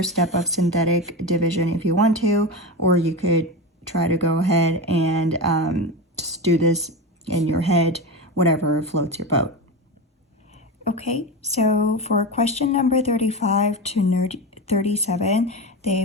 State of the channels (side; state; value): both; normal; correlation 0.20